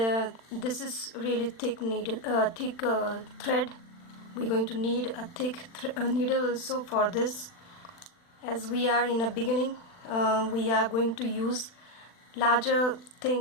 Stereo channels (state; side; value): late; right; 40 ms